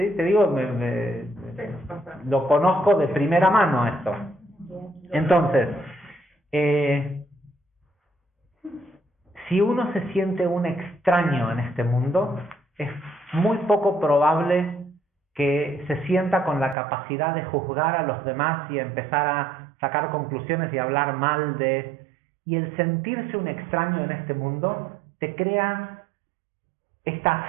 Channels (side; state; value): left; drops out; at 16.8 s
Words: Te digo, lo conozco de primera mano esto. Entonces, si uno se siente un extraño en este mundo, es muy poco probable que se sienta con la capacidad de juzgar a los demás y empezar a sacar conclusiones y hablar mal de... Y el sentirse un extraño en este mundo te crea esta